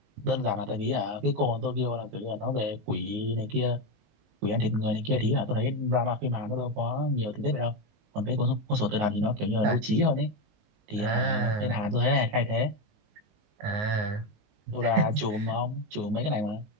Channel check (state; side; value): late; left; 19 ms